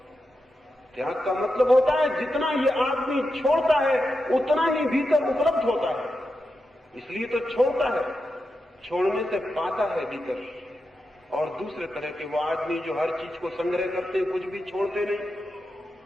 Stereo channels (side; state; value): both; normal; correlation 0.88